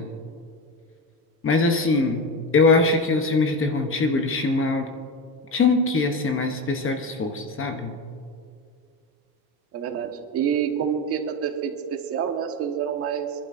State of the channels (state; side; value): normal; both; correlation 0.20